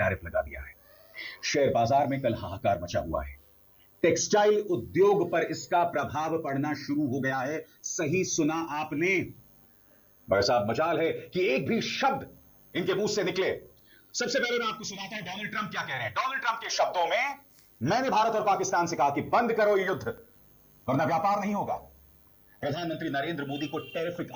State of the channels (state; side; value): identical; both; correlation 1.00